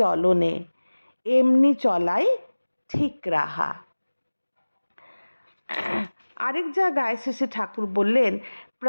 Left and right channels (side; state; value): both; inverted; correlation -1.00